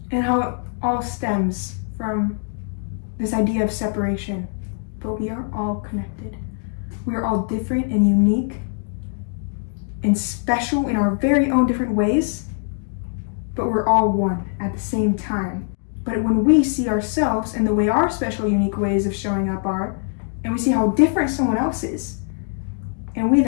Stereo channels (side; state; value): right; silent; 57 dB below the other